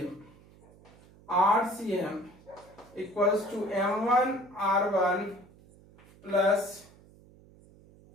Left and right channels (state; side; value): noise; right; hum, 25 dB below the sound